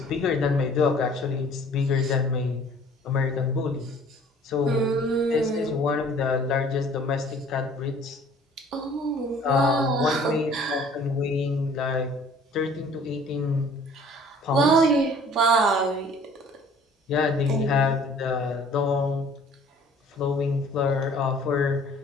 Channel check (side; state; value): both; normal; correlation 0.52